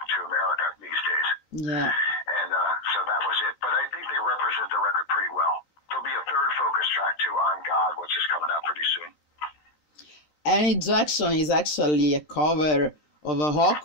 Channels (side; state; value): right; late; 13 ms